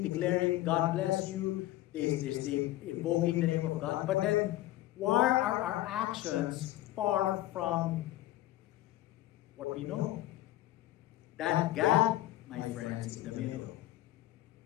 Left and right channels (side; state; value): right; quieter; 15.6 dB